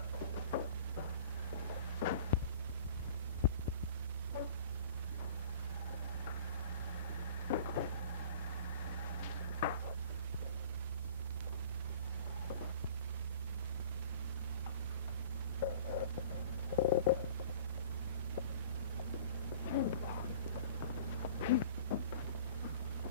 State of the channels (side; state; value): both; inverted; correlation -0.45